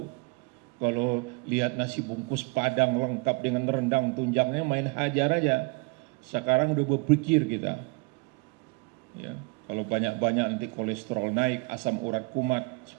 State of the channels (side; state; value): left; quieter; 30.5 dB